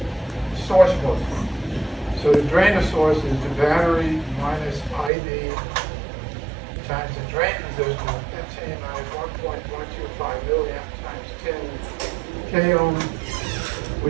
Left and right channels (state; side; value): drops out; left; at 5.1 s